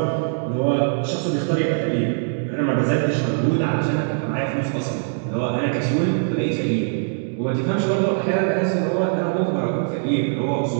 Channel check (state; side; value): silent; left; digital silence